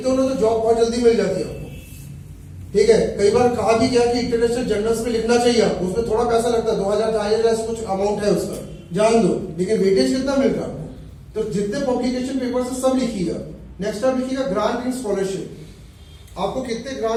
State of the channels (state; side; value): identical; both; correlation 1.00